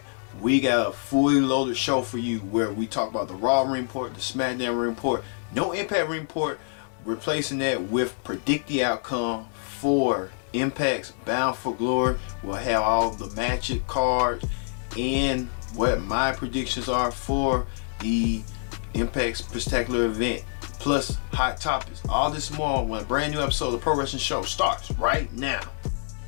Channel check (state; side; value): silent; right; digital silence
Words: we got a fully loaded show for you where we talk about the Raw Ring Report, the SmackDown Ring Report, no Impact Ring Report, replacing that with Predict the Outcome for Impact's Bound for Glory. We'll have all the Magic cards and what my predictions are for the Impact's Spectacular event, plus hot topics. All this more when a brand new episode of the Pro Wrestling Show starts right now.